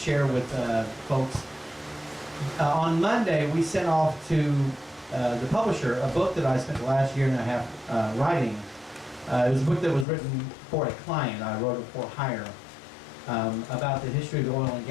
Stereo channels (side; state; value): right; drops out; at 10.1 s